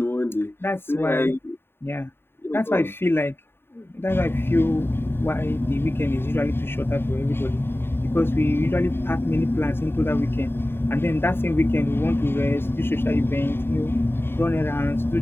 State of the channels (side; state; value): right; late; 0.11 ms